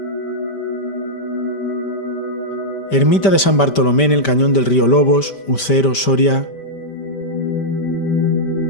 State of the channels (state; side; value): late; right; 5.1 ms